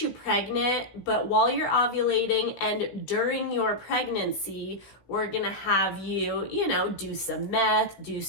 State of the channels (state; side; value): late; right; 16 ms